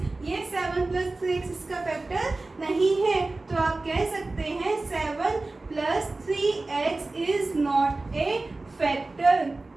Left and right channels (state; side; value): quieter; left; 3.2 dB